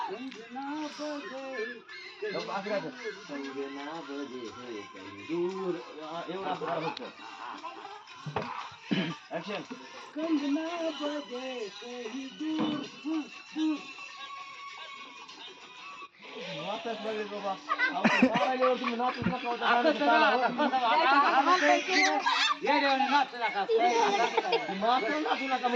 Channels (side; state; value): both; identical; correlation 1.00